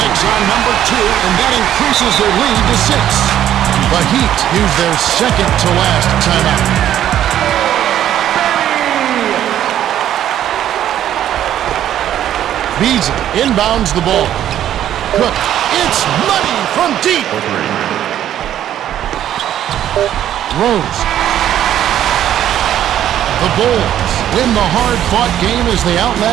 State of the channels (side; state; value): left; quieter; 11.2 dB